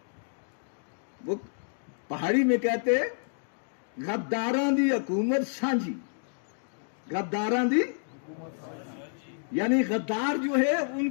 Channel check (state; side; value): silent; right; digital silence